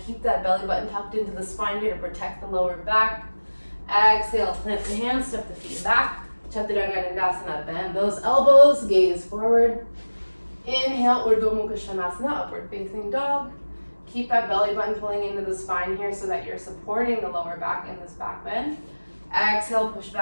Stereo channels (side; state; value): both; inverted; correlation -1.00